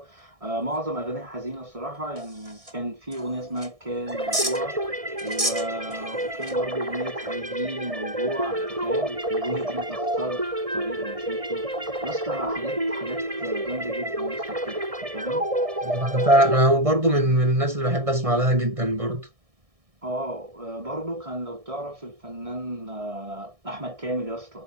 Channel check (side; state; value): left; late; 1.6 ms